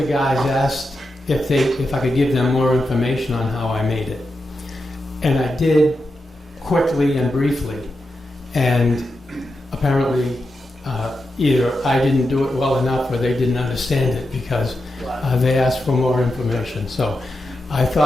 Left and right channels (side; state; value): both; normal; correlation 0.88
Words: guys asked if I could give them more information on how I made it, and I did quickly and briefly, and apparently either I didn't do it well enough or they didn't understand it because they asked for more information. So I